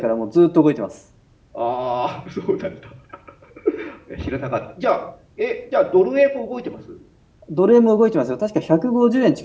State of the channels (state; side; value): identical; both; correlation 1.00